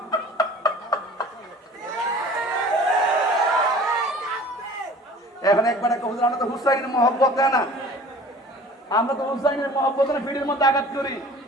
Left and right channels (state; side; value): normal; both; correlation 0.45